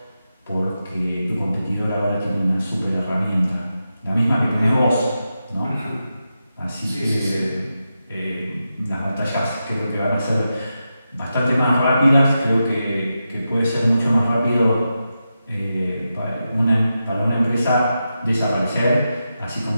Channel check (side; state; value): both; inverted; correlation -0.89